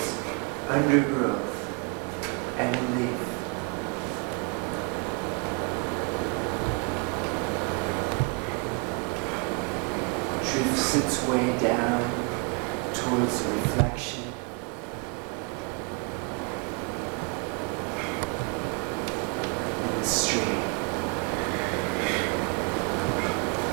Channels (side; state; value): left; quieter; 32.2 dB